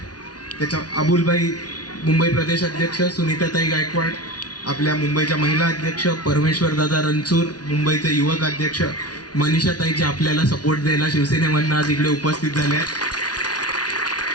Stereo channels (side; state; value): right; late; 0.69 ms